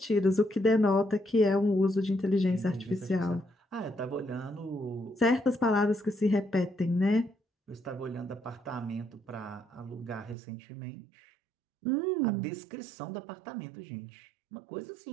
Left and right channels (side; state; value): left; drops out; at 10.4 s